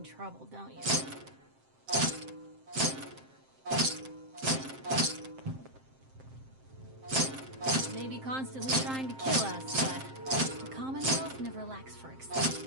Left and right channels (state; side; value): late; left; 7.6 ms